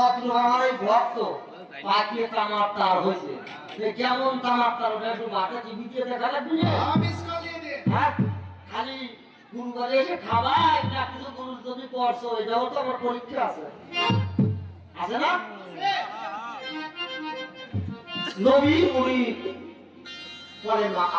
আমার এই ভক্ত পাকিয়ে তামার তার হয়েছে, কেমন তামার তার ওটা একটু মাঠে টিভি দিয়ে দেখা লাগবে। হ্যাঁ, খালি গুরুবারে এসে খাবাই না কিছু গুরু যদি করছো, এটাও তো আমার পরীক্ষা আছে, আছে না? নবী মুনি পরে না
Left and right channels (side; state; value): both; identical; correlation 1.00